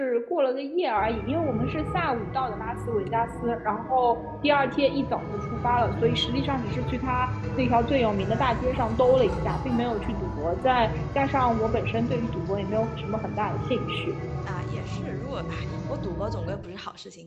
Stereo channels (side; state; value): both; identical; correlation 1.00